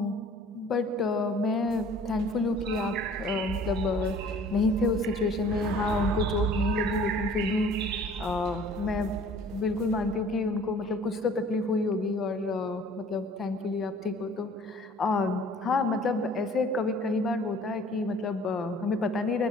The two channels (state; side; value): normal; both; correlation 0.51